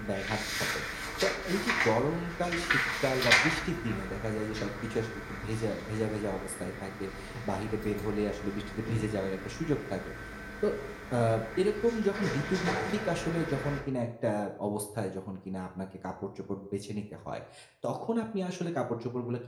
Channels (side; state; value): both; identical; correlation 1.00